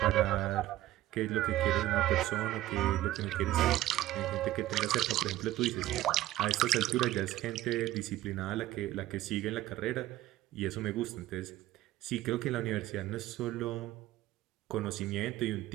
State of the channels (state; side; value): quieter; left; 14.9 dB